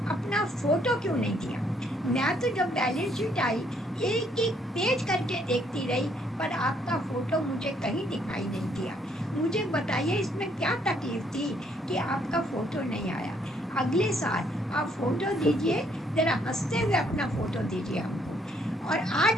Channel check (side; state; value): both; normal; correlation 0.68